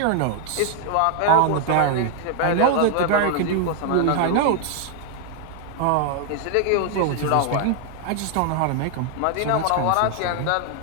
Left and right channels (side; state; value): both; different; correlation 0.00